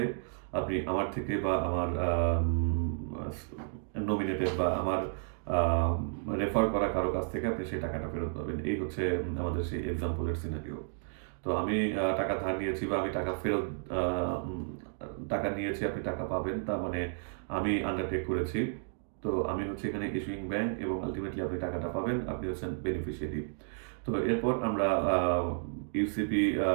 আপনি আমার থেকে বা আমার আস নমিনেটেড বা আমার রেফার করা কারো কাছ থেকে আপনি সেই টাকাটা ফেরত পাবেন। এই হচ্ছে আমাদের সেই এক্সাম্পলের সিনারিও। তো আমি টাকা ধার নিয়েছি বা আমি টাকা ফেরত আ উম টাকা নিয়েছি, আপনি টাকা পাবেন। তার মানে আমি আন্ডারটেক করেছি। তো আমি হচ্ছি এখানে ইস্যুইং ব্যাংক এবং আল্টিমেটলি আপনি টাকাটা পাবেন। আপনি হচ্ছেন বেনিফিশিয়ারি। তো এরপর আমরা UCP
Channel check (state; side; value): silent; left; digital silence